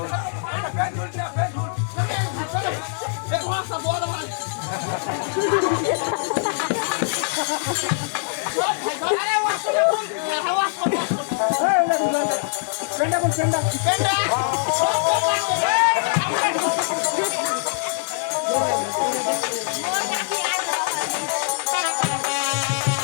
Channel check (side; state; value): right; silent; 63 dB below the other